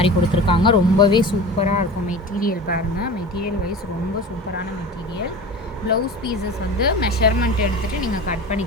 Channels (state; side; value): normal; both; correlation 0.34